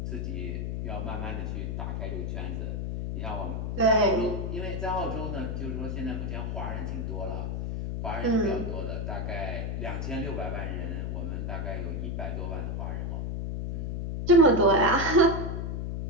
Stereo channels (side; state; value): left; noise; hum, 2 dB below the sound